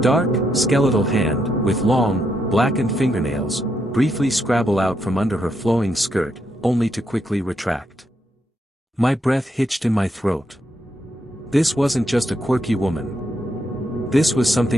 skeletal hand, with long, blackened fingernails, briefly scrabble out from under her flowing skirt, only to quickly retract. My breath hitched in my throat. This wasn't just a quirky woman. This was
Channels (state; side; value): normal; both; correlation 0.79